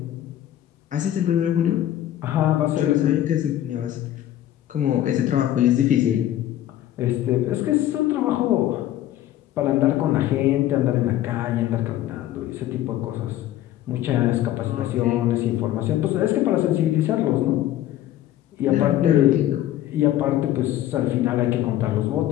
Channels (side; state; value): right; quieter; 12.9 dB